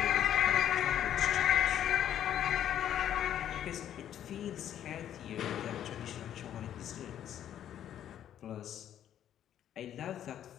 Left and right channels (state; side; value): quieter; right; 10.6 dB